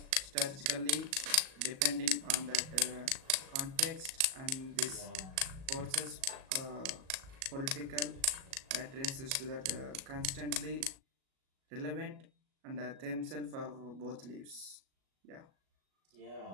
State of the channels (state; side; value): late; left; 37 ms